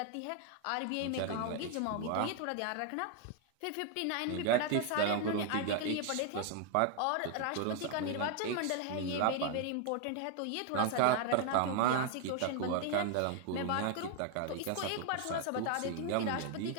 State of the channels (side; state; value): both; different; correlation 0.00